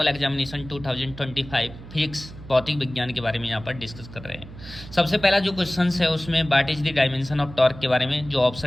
examination 2025 physics भौतिक विज्ञान के बारे में यहाँ पर डिस्कस कर रहे हैं। सबसे पहला जो क्वेश्चन है उसमें what is the dimension of torque के बारे में, जो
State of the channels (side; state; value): right; noise; hum, 15 dB below the sound